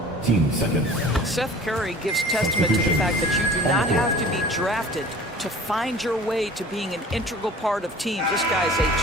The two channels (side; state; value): both; normal; correlation 0.44